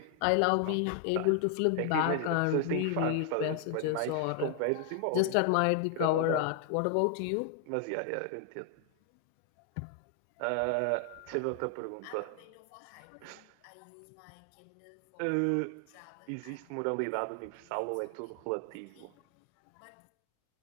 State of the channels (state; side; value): different; both; correlation 0.00